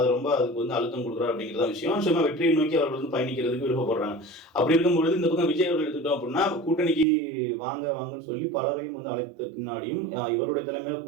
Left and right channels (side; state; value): left; drops out; at 7.1 s